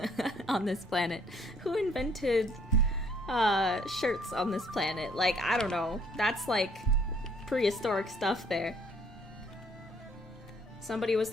on this planet? Who invented shirts on this planet? Like, I don't know. That's like prehistoric stuff there. Somebody was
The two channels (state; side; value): normal; both; correlation 0.63